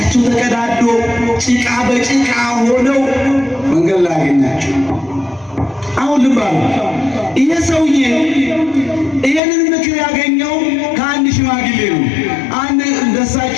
ተቀዳዶ ጭቃ በጭቃ ሆነው መንገድ ላይ አገኛቸው። አሁን ልብ አሉ። ይሄ ሰውዬ ይሄንን ምክር ያገኘው ከአንድ ሽማግሌ ነው። አንድ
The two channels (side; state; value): right; drops out; at 9.4 s